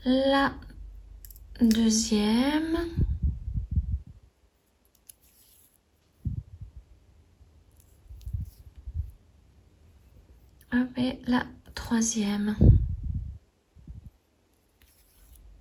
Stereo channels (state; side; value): identical; both; correlation 1.00